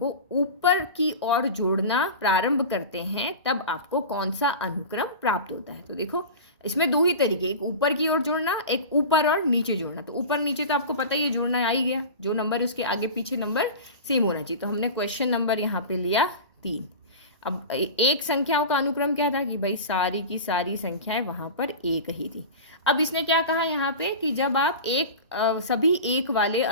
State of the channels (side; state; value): both; inverted; correlation -0.31